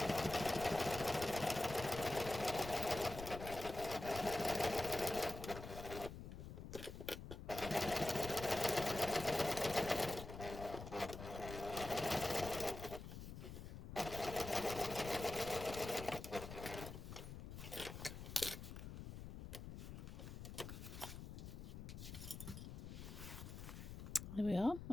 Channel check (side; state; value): left; noise; rumble, 9 dB below the sound